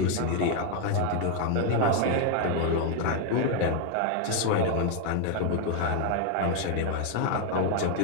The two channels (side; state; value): both; different; correlation 0.00